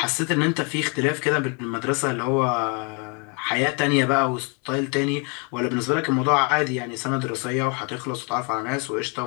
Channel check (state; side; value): quieter; right; 34.7 dB